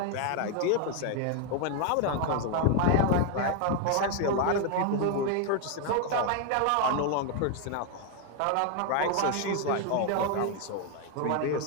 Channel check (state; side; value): different; both; correlation 0.01